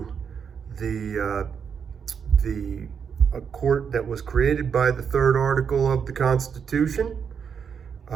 the a court that was created by the third article of the Constitution,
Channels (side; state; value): left; quieter; 6.9 dB